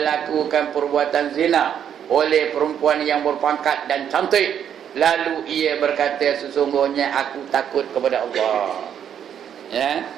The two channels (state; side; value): quieter; left; 9.0 dB